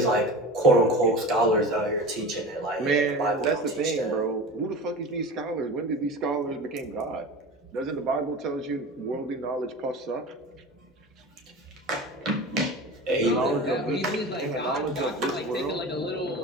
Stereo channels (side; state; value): both; normal; correlation 0.33